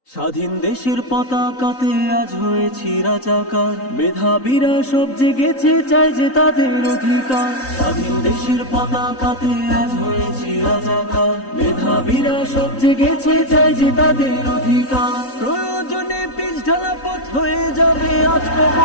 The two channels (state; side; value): late; right; 3.9 ms